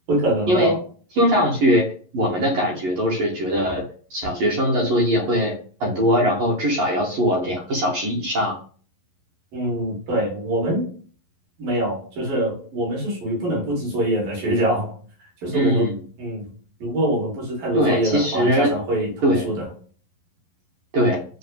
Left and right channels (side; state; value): left; late; 11 ms